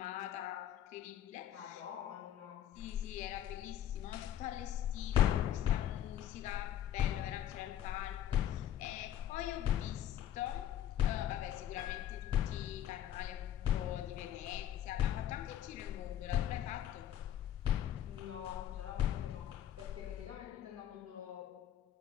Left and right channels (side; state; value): right; quieter; 11.0 dB